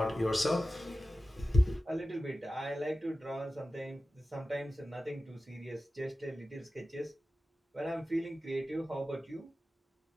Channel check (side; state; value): both; normal; correlation 0.95